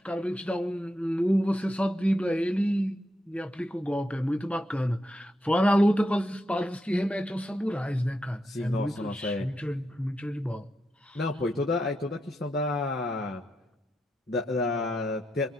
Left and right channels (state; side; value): normal; both; correlation 0.84